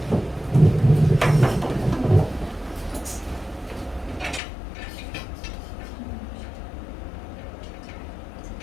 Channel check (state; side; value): drops out; right; at 4.4 s